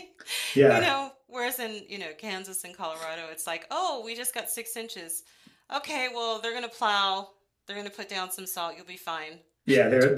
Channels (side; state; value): both; identical; correlation 1.00